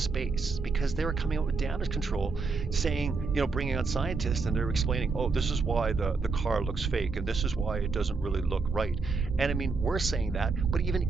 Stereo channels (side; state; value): left; quieter; 4.4 dB